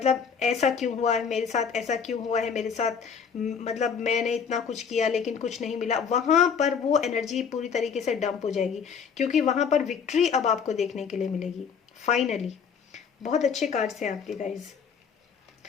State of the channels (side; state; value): right; quieter; 6.6 dB